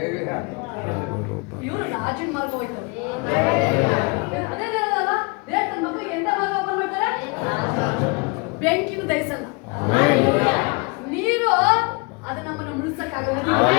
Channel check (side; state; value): right; quieter; 29.8 dB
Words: ಇವರು ರಾಜನ ಮಾರ್ಗ ಹೋಯ್ತಾರೆ. ಅದೇ ಹೇಳೋದಲ್ಲ, ದೇವ್ರ ತನ್ನ ಮಕ್ಕಳಿಗೆ ಎಂತ ಮಾರ್ಗ ಓಪನ್ ಮಾಡ್ತಾರೆ? ಬೆಂಕಿನ ದಹಿಸಲ್ಲ, ನೀರು ಅದು ನಮ್ಮನ್ನು ಮುಳ್ಸಕ್ಕಾಗಲ್ಲ.